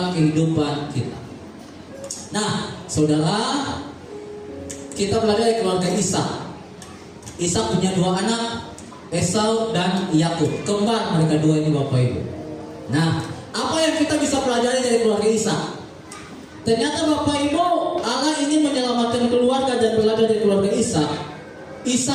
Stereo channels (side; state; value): both; identical; correlation 1.00